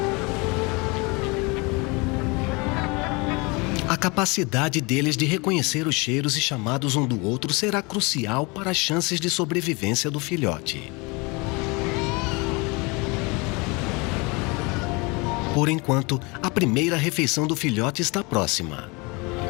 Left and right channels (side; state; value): right; quieter; 27.7 dB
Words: A capacidade deles de reconhecer os cheiros e chamados um do outro será crucial para as chances de sobrevivência do filhote. Por enquanto, a primeira refeição do filhote está próxima.